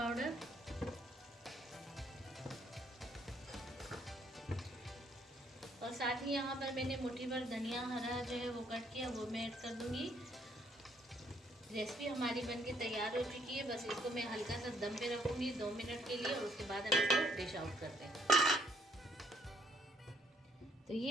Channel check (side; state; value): both; normal; correlation 0.68